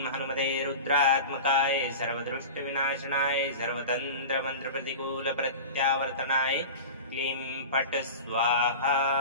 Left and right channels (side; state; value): both; inverted; correlation -0.32